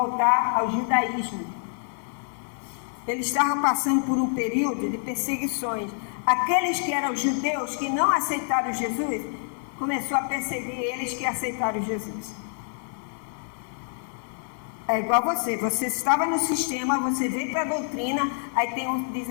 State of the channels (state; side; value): silent; right; 60 dB below the other